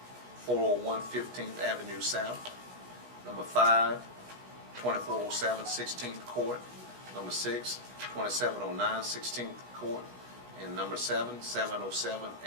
401 15th Avenue South. Number 5, 2407 16th Court. Number 6, 2709 16th Court. And number 7, 707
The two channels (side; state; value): left; late; 16 ms